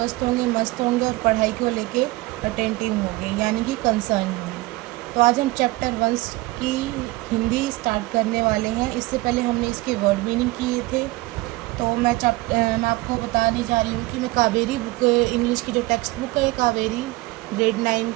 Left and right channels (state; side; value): quieter; left; 20.7 dB